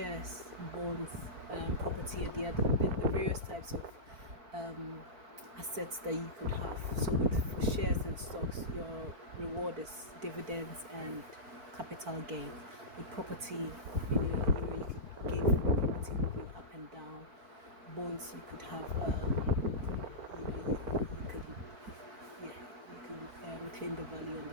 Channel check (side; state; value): left; late; 4.5 ms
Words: bonds, property, and the various types of assets that you could have. So with shares and stocks, your reward is dividends and capital gain. With property, you could gain from the property moving up and down. Bonds, you could have you could retain the value on